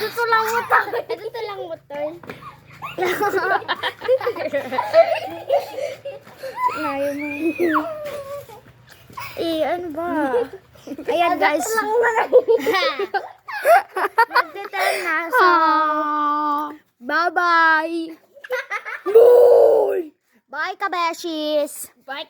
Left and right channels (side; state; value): both; identical; correlation 1.00